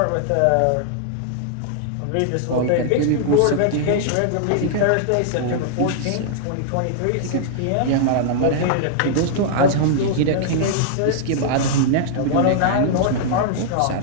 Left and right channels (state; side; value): different; both; correlation -0.01